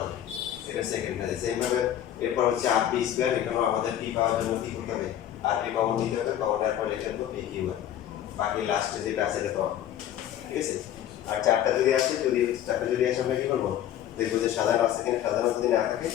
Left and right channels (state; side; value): quieter; right; 11.3 dB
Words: এটা সেকেন্ডটা সেম ভাবে এরপর হচ্ছে rp স্কয়ার, এখানেও আমাদের p পাওয়ার জন্য কি করতে হবে rp কমন নিতে হবে, কমনের পর লিখে দেবো p q আর, বাকি লাস্টে যেটা আছে এটা পাওয়া, ঠিক আছে। আর চারটা যদি আসে, চারটা যদি আসে আমরা কি করবো, দেখবো যে সাজানো আছে কিনা, সাজানো যদি না থাকে